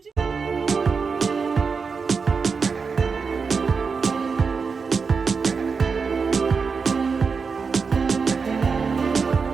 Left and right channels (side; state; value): left; quieter; 5.2 dB